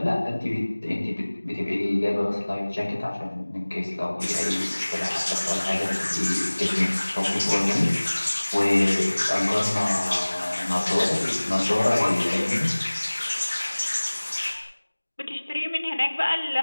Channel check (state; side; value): inverted; both; correlation -1.00